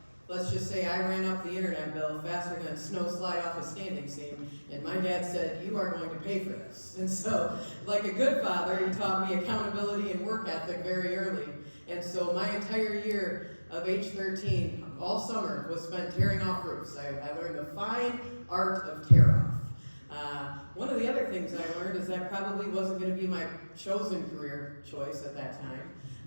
let's just say I ran up the internet bill faster than a snow slide off a standing seam, and my dad said, you are going to pay for this. And so, like a good father, he taught me accountability and work ethic very early. And so my entire year of age 13, all summer, was spent tearing off roofs. I learned the fine art of tear-off. One of the other things I learned is that probably wasn't going to be my chosen career choice at that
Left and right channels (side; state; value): both; inverted; correlation -1.00